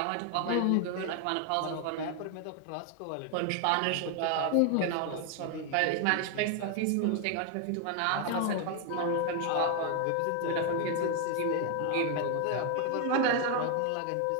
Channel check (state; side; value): different; both; correlation 0.01